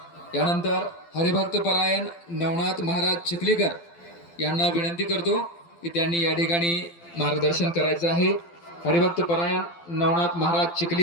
यानंतर हरिभक्त परायण नवनाथ महाराज चिखलीकर यांना विनंती करतो की त्यांनी या ठिकाणी मार्गदर्शन करायचं आहे. हरिभक्त परायण नवनाथ महाराज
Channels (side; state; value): right; late; 12 ms